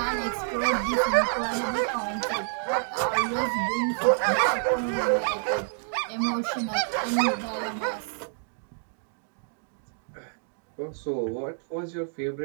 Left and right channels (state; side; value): silent; left; digital silence